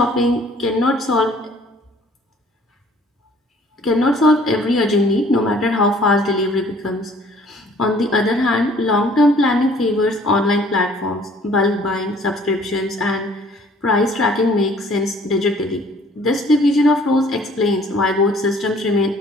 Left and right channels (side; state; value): both; normal; correlation 0.56